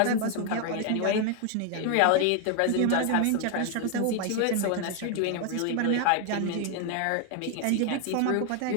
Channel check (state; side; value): different; both; correlation 0.01